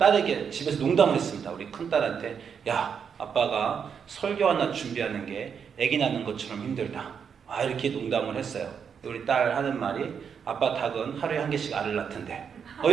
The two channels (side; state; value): left; quieter; 7.0 dB